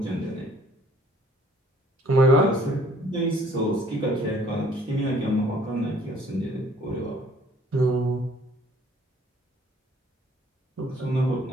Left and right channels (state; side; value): normal; both; correlation 0.58